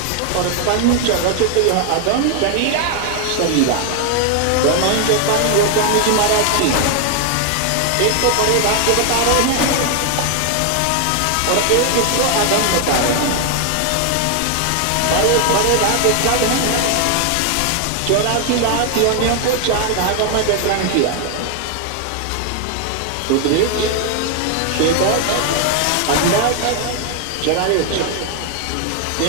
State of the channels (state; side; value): different; both; correlation 0.00